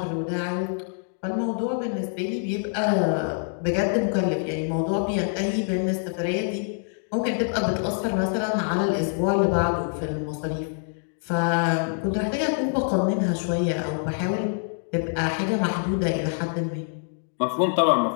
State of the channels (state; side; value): silent; right; digital silence